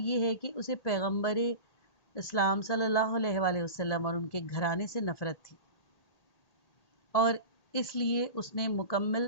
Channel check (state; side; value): late; right; 1.8 ms